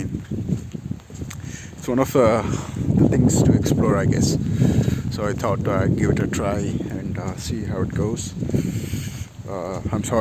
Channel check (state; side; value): identical; both; correlation 1.00